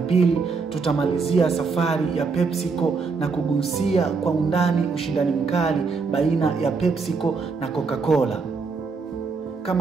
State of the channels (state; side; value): quieter; left; 4.7 dB